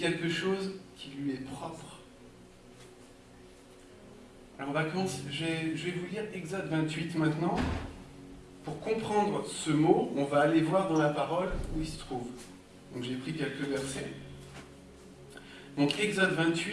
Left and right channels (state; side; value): identical; both; correlation 1.00